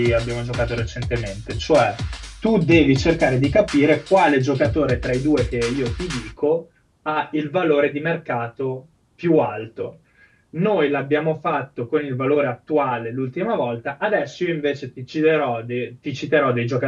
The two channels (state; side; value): identical; both; correlation 1.00